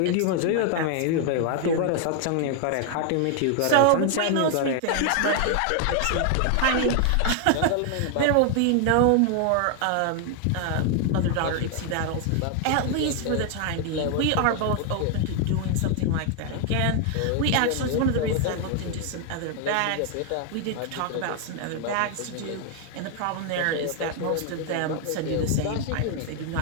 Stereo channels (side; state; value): both; different; correlation 0.00